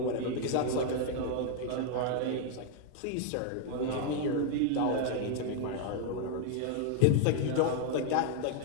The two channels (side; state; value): both; different; correlation 0.00